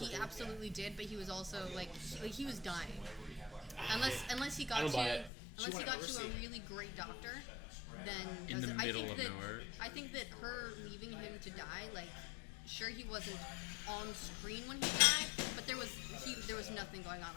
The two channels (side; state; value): right; drops out; at 5.3 s